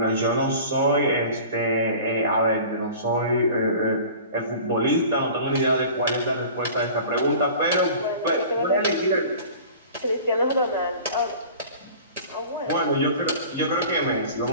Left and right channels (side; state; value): both; inverted; correlation -0.42